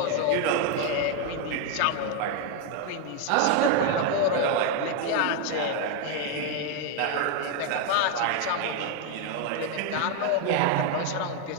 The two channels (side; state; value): both; different; correlation 0.01